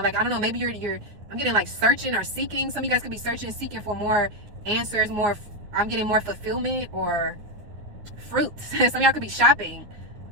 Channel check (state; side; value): late; left; 9.5 ms